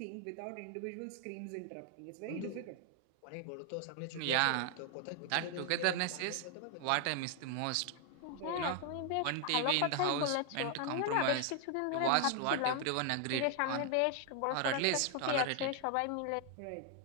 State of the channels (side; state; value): both; different; correlation 0.00